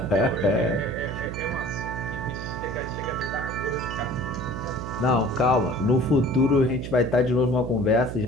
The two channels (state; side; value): noise; right; hum, 7 dB below the sound